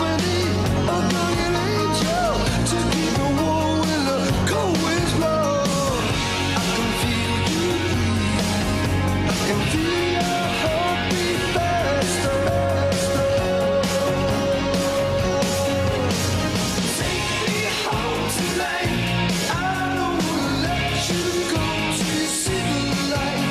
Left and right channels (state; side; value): identical; both; correlation 1.00